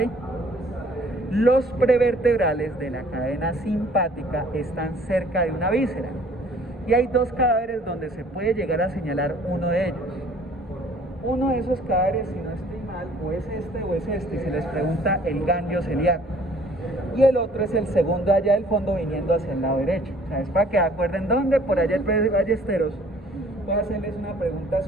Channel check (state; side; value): normal; both; correlation 0.55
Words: Los prevertebrales de la cadena simpática están cerca de una víscera. Y hay 2 cadáveres donde se puede llegar a señalar uno de ellos. Uno de esos cadáveres, si no estoy mal, o es este, y se les pregunta el ganglio celíaco. Y el otro es el segundo allá del fondo viniendo hacia el lado derecho. O sea, es para que acuerden dónde, por allá el Ballesteros, voy a hacerles una pregunta